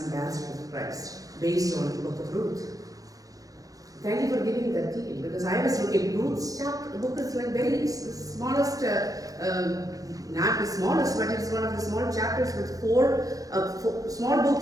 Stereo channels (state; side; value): late; left; 0.17 ms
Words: ambassadors of Christ, based on the book of Ruth. Thank you for giving that detail, because I was looking, Ruth's chapter book is like very smallest, not the smallest, but it's one of the small chapters with four small